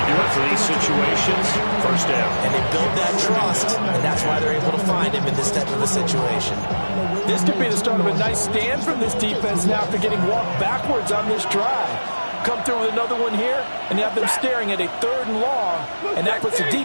do it for these situations. First down. And they build that trust, and that's why they're able to find him in this type of a situation. This could be the start of a nice stand from this defense now after getting walked backwards on this drive. Come through with another one here, and you have them staring at a 3rd and long, and that puts the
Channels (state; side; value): inverted; both; correlation -1.00